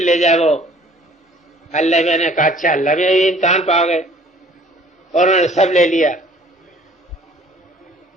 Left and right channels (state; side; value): normal; both; correlation 0.54